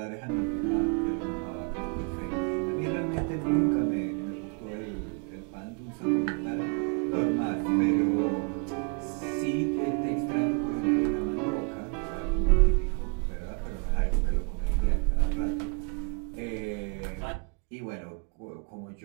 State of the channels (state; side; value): quieter; left; 36.0 dB